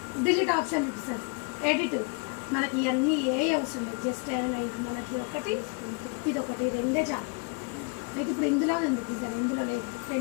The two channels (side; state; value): right; quieter; 32.6 dB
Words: ఆప్షన్ చూపిస్తుంది, ఎడిట్. మనకి ఇవన్నీ ఏ అవసరం లేదు, జస్ట్ మనకి ఒకటి ఇది ఒకటి రెండే చాలు. అయితే ఇప్పుడు ఇందులో ఉంది డిజైన్, ఇందులో లేదు,